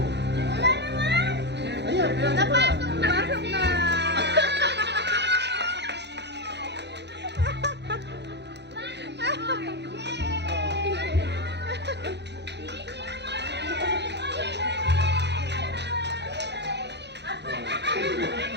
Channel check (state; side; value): late; left; 0.50 ms